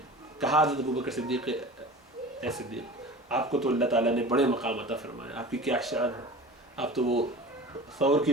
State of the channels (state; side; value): normal; both; correlation 0.37